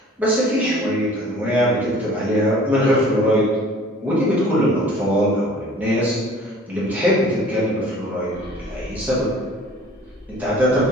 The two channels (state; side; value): normal; both; correlation 0.49